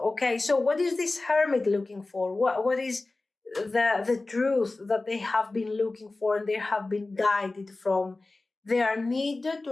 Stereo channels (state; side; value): quieter; right; 3.2 dB